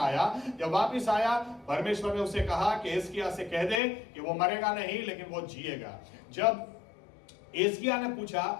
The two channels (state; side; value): drops out; right; at 3.8 s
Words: जब वापस आया, परमेश्वर ने उसे कहा कि एस्किया से कह दे कि वो मरेगा नहीं लेकिन वो जिएगा। जब एस्किया ने पूछा